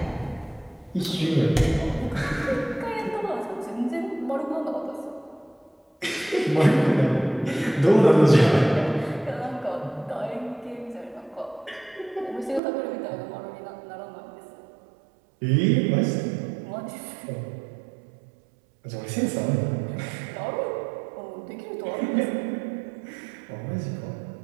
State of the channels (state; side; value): drops out; left; at 12.6 s